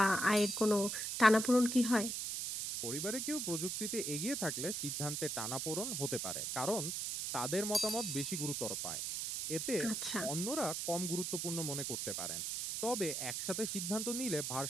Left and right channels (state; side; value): noise; right; hiss, 2 dB below the sound